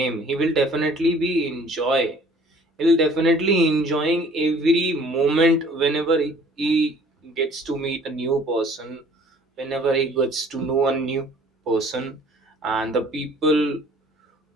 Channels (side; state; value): both; normal; correlation 0.54